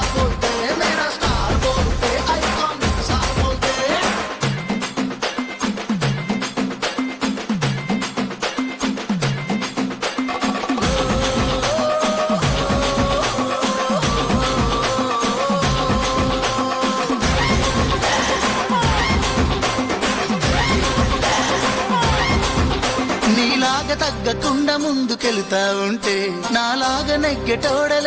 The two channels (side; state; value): both; identical; correlation 1.00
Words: బోల్తే మేరా స్టార్ బోల్తే ఐకాన్ స్టార్ బోల్తే. నీలాగా తగ్గకుండా ముందుకెళ్తా ఉంటే నాలాగా